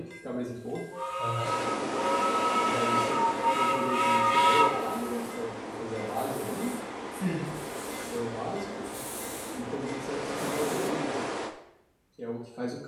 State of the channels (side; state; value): both; identical; correlation 1.00